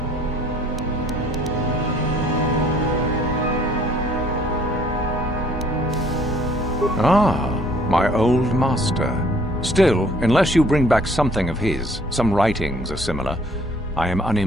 Ah, my old master. Still, unless you bring back something of his, some writings are similar, I am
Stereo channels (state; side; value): normal; both; correlation 0.58